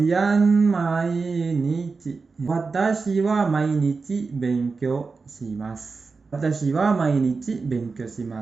mainichi. Watashi wa mainichi benkyou shimasu. Watashi wa mainichi benkyou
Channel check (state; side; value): quieter; left; 4.4 dB